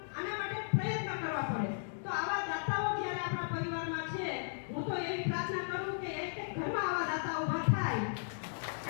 આના માટે પ્રયત્ન કરવા પડે. તો આવા દાતાઓ જ્યારે આપણા પરિવારમાં છે, હું તો એવી પ્રાર્થના કરું કે એક ઘરમાં આવા દાતા ઊભા થાય કે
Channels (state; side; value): silent; right; digital silence